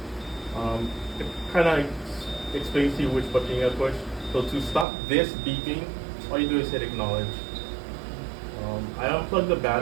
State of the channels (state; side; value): drops out; left; at 4.9 s